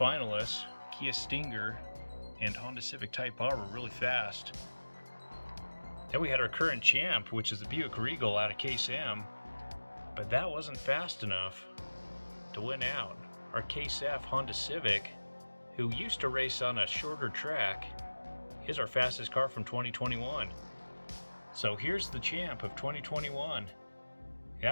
Kia Stinger and Honda Civic Type R were really fast. Then we had our current champ, which is the Buick Regal out of Case M. But that wasn't fast enough to win out. Our Case F Honda Civic, who used to race on a shorter track, is our fastest car from 2021. So here's the champ of 2021.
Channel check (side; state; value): both; inverted; correlation -1.00